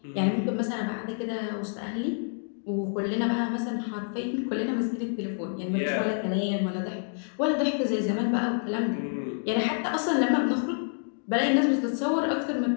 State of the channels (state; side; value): silent; right; digital silence